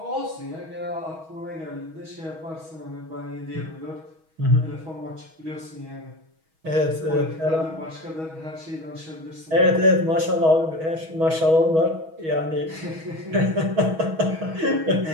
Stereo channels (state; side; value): late; left; 6.3 ms